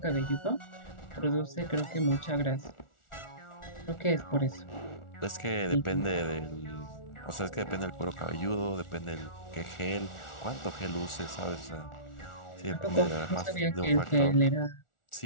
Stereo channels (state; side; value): late; right; 1.4 ms